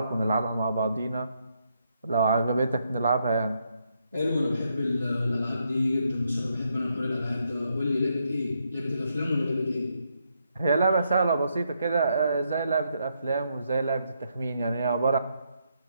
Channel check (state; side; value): inverted; both; correlation -0.78